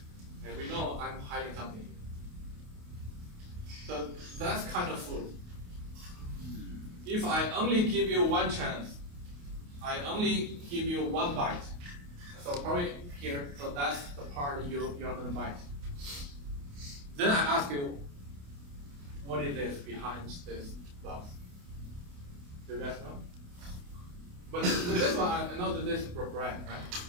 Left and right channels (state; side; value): late; left; 28 ms